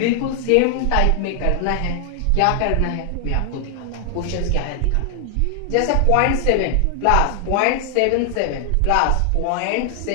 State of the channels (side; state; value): both; different; correlation 0.00